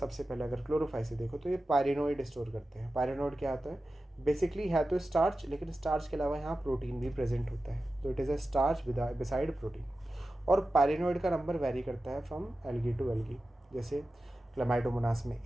पहले अगर क्लोरोफाइसी देखो तो ये पायरिनोइड स्टोर करते हैं। पायरिनोइड क्या होता है, बेसिकली है तो स्टार्च, लेकिन स्टार्च के अलावा यहाँ प्रोटीन भी प्रेजेंट होता है, तो it is a starch beside protein. और पायरिनोइड का नंबर वेरी करता है फ्रॉम एल्गी टू एल्गी। जैसे क्लामाइडोमोनास में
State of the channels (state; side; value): normal; both; correlation 0.93